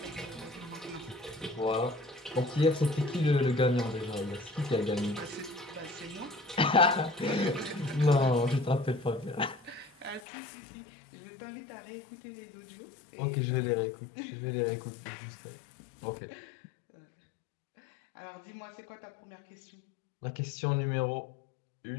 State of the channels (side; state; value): right; drops out; at 10.2 s